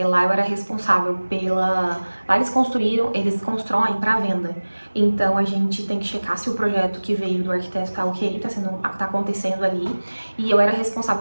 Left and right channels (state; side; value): inverted; both; correlation -1.00